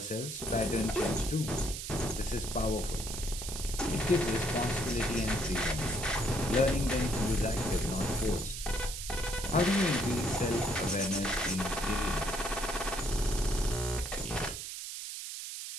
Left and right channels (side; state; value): right; noise; hiss, 7 dB below the sound